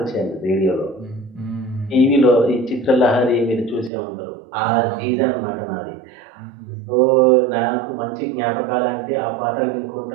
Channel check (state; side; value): drops out; left; at 3.9 s